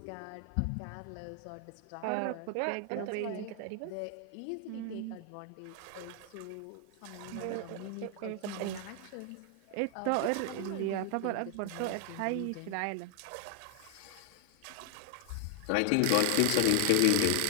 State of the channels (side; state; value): both; different; correlation 0.00